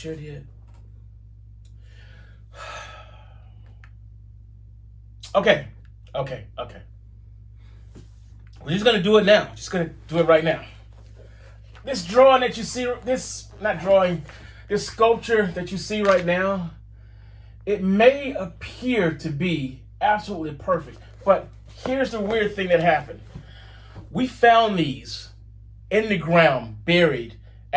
did. Okay. We're just gonna do it now. Just gonna do it right now. This drawing that you see, this sculpture that you see right now, it may appear to be absolutely perfect, but here's the weird thing that happened. We found these in the ground, buried,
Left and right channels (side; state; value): both; identical; correlation 1.00